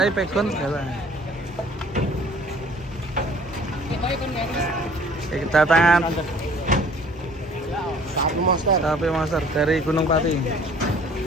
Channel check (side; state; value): both; normal; correlation 0.53